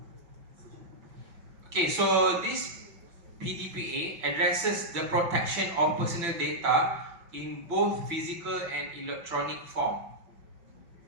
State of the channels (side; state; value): left; late; 6.0 ms